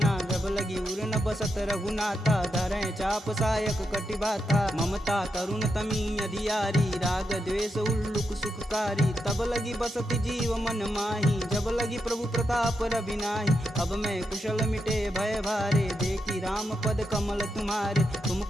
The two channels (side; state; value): both; normal; correlation 0.84